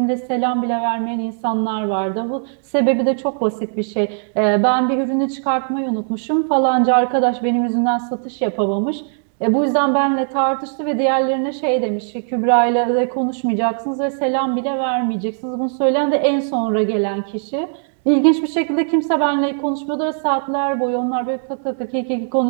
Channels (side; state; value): left; silent; digital silence